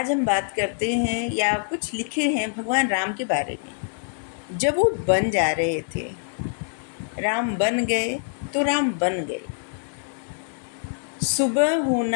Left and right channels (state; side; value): silent; right; digital silence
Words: हम बात करते हैं या कुछ लिखे हैं भगवान राम के बारे में। जब वो बन जा रहे थे, राम बन गए तो राम बन गए। सुबह